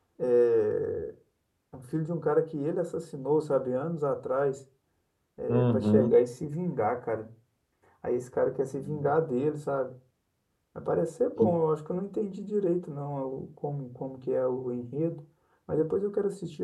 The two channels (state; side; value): identical; both; correlation 1.00